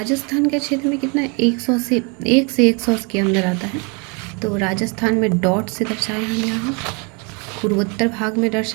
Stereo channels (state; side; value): quieter; left; 33.1 dB